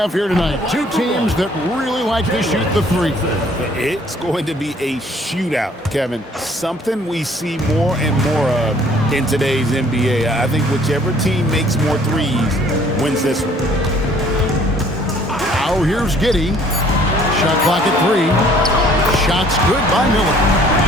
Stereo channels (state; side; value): normal; both; correlation 0.58